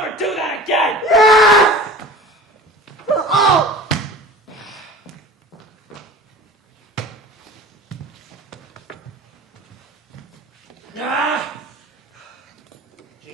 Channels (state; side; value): normal; both; correlation 0.39